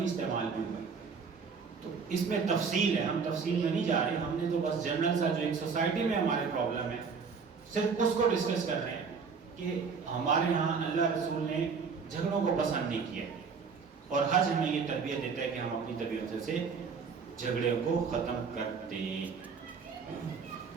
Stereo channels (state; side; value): quieter; left; 5.5 dB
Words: استعمال بھی ہوا ہے، تو اس میں تفصیل ہے، ہم تفصیل میں نہیں جا رہے، ہم نے تو بس جنرل سا جو ایک سوسائٹی میں ہمارے پرابلم ہے صرف اس کو ڈسکس کر رہے ہیں کہ ہمارے ہاں اللہ رسول نے جھگڑوں کو پسند نہیں کیا، اور حج ہمیں یہ تربیت دیتا ہے کہ ہم اپنی طبیعت سے جھگڑے کو ختم کر دیں۔